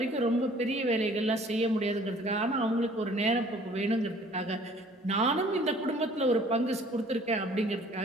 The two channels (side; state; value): both; normal; correlation 0.54